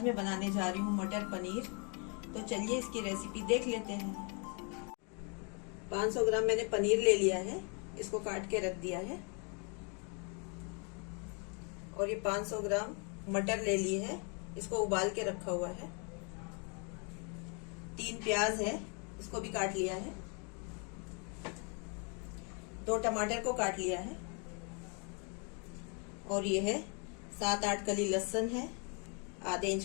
मैं बनाने जा रही हूँ मटर पनीर। तो चलिए इसकी रेसिपी देख लेते हैं। 500 ग्राम मैंने पनीर ले लिया है, इसको काट के रख दिया है। और ये 500 ग्राम मटर ले ली है, इसको उबाल के रखा हुआ है। 3 प्याज है, इसको भी काट लिया है। 2 टमाटर को काट लिया है। और ये है 7-8 कली लहसुन है, आधे इंच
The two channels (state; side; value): quieter; right; 36.4 dB